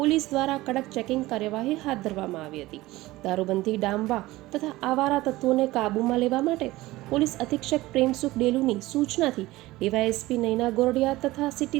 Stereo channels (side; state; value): left; quieter; 18.4 dB